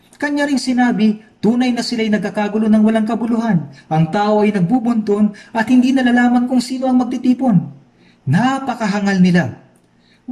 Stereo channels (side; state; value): both; identical; correlation 1.00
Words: Kanya ring sinabi, tunay na sila'y nagkakagulo ng walang kabuluhan. Ang tao ay nagbubunton at hindi nalalaman kung sino ang magtitipon. Napakahangal nila.